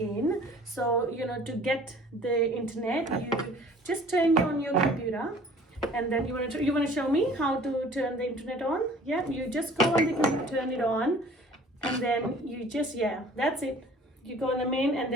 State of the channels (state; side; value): normal; both; correlation 0.50